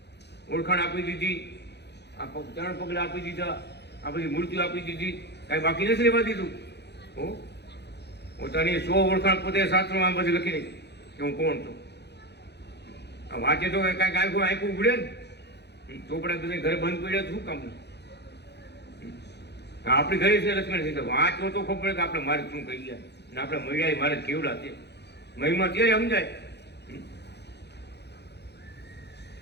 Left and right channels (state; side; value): late; right; 0.49 ms